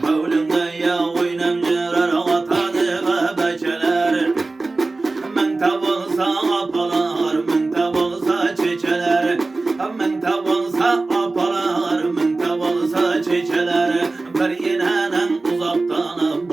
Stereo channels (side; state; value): left; quieter; 3.4 dB